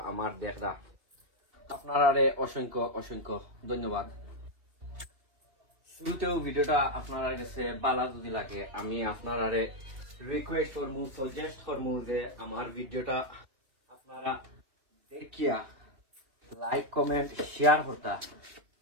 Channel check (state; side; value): late; left; 2.9 ms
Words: আমার দেখরা, আপনারারে অসংখ্য অসংখ্য ধন্যবাদ। শুরুতেও ভিডিওটা আপনারা কাছে ভালো যদি লাগে আমি আপনারারে রিকোয়েস্ট করমু, সাজেস্ট করমু যে আমার ভিডিওটা আপনারা দেখিয়া লাইক কমেন্ট শেয়ার করতা।